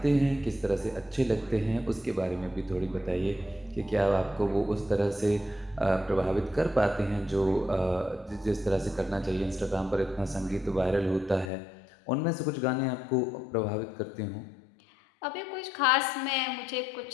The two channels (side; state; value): right; drops out; at 11.5 s